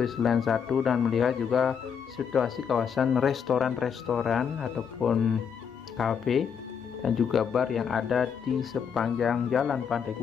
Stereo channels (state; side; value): quieter; right; 7.1 dB